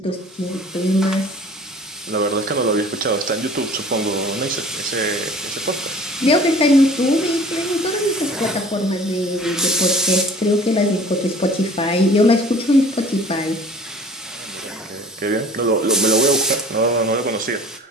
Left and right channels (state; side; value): normal; both; correlation 0.47